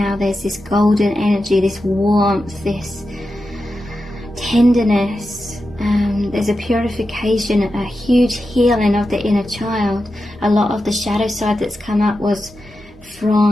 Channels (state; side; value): normal; both; correlation 0.90